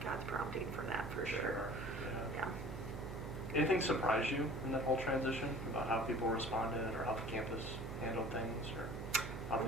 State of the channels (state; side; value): noise; right; hum, 6 dB below the sound